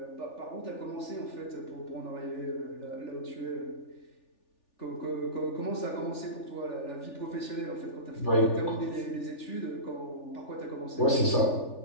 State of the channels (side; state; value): right; late; 3.4 ms